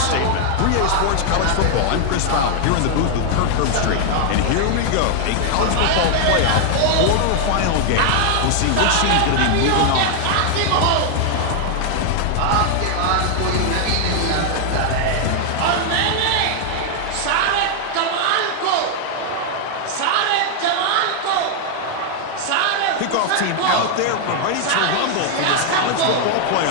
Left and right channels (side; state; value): both; different; correlation 0.00